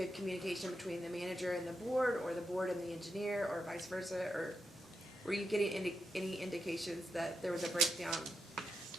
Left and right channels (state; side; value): normal; both; correlation 0.85